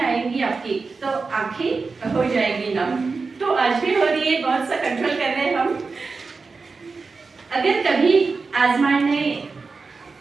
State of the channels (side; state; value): left; quieter; 4.4 dB